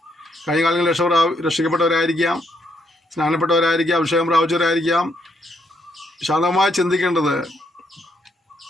കഴിഞ്ഞ കാലങ്ങളിൽ രക്ഷിക്കപ്പെട്ടവരായിരിക്കാം, സ്നാനപ്പെട്ടവരായിരിക്കാം, അഭിഷേകം പ്രാപിച്ചവരായിരിക്കാം. ശാന്തമായി ചിന്തിക്കേണ്ടത്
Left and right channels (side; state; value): both; normal; correlation 0.74